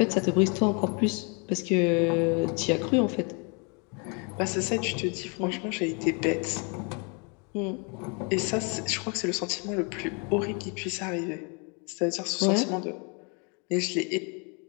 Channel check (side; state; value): right; quieter; 34.6 dB